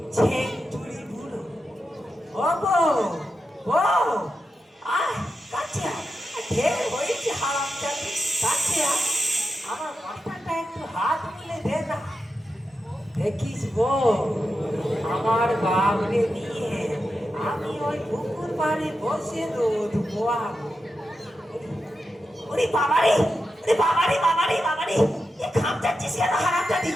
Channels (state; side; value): normal; both; correlation 0.89